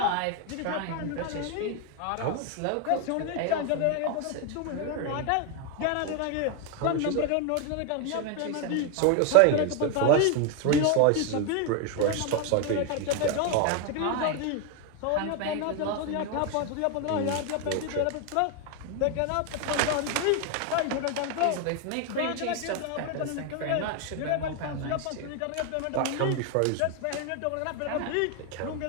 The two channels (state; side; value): different; both; correlation 0.01